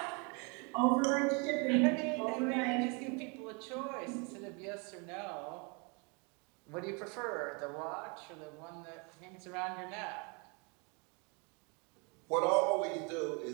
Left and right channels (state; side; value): quieter; left; 33.0 dB